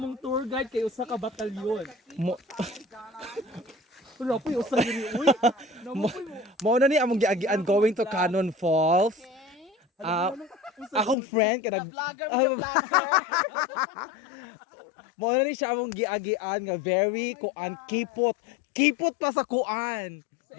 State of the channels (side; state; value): right; drops out; at 11.2 s